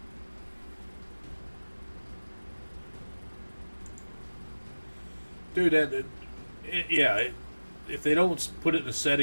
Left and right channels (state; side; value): inverted; both; correlation -1.00